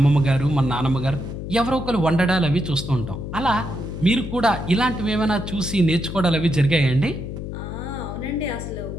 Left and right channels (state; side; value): noise; left; hum, 7 dB below the sound